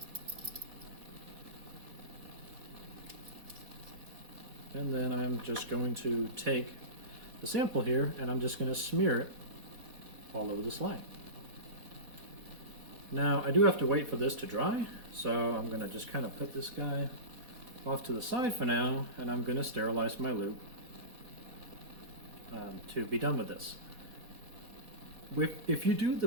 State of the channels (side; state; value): left; late; 4.1 ms